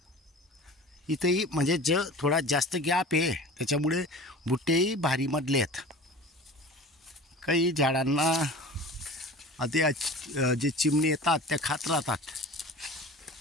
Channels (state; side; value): normal; both; correlation 0.38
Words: इथंही म्हणजे थोडा जास्त गॅप आहे, त्याच्यामुळे बुट्टेही भारी मधले आहेत. काही झाडांना आधी जे चिमणी येतात त्या खात राहतात.